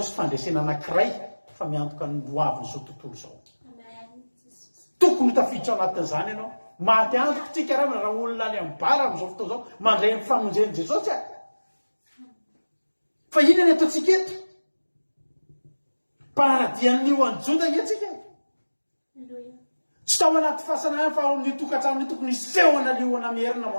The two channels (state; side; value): inverted; both; correlation -1.00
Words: fandresena anankiray fa miantoka ny loaviny zao tontolo zao. Tokony tafiditra anatin'izany ianao. Maty antoko tsika raha olona any amin'ny bara amin'izao fotoana zao mandray ny famonjen'i Jesosy fa inona ny ataontsika eto? Mpanaradian'ny liona Joda etsika. Tsy tao anaty fahasanana fa ao amin'ny tokantrano tokony isehona liona mierina